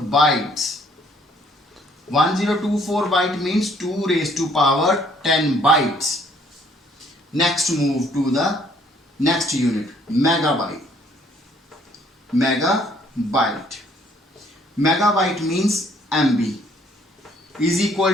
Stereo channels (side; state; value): both; normal; correlation 0.63